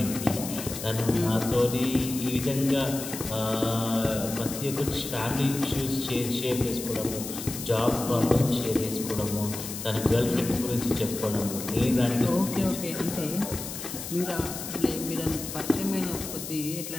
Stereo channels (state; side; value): noise; left; hiss, 8 dB below the sound